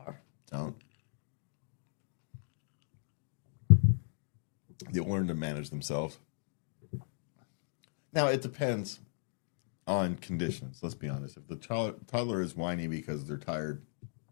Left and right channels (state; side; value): silent; right; digital silence